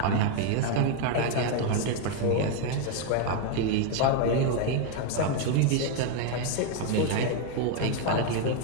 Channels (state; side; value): different; both; correlation 0.01